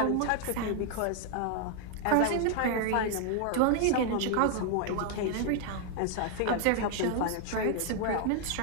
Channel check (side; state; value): both; different; correlation 0.00